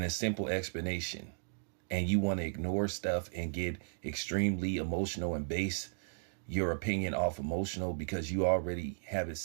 a simple explanation, and you want to ignore stuff and get extremely emotional and base your opinion off emotional because you already have it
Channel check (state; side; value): silent; left; digital silence